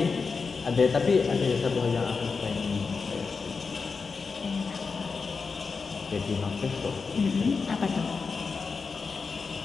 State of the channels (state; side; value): quieter; right; 4.9 dB